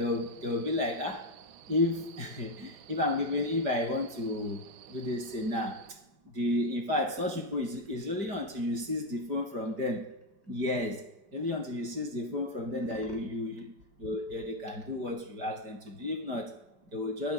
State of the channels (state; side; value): late; left; 5.0 ms